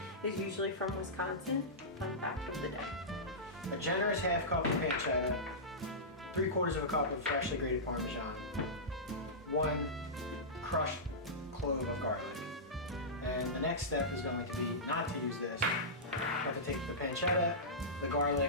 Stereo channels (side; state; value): both; normal; correlation -0.15